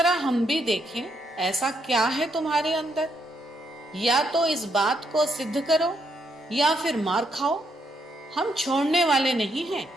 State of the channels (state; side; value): normal; both; correlation 0.76